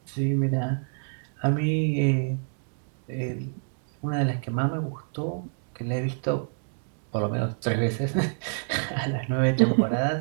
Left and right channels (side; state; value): left; silent; digital silence